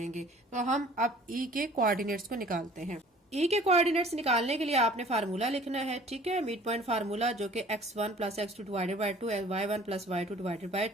तो हम अब E के कोऑर्डिनेट्स को निकालते हैं। E के कोऑर्डिनेट्स निकालने के लिए आपने फार्मूला लिखना है, ठीक है, मिड पॉइंट फार्मूला, जो कि x1 plus x2 divided by 2, y1 plus y2 divided by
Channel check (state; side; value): normal; both; correlation 0.50